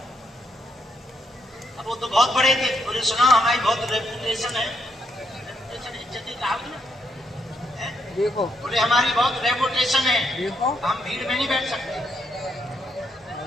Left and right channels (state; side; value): normal; both; correlation 0.77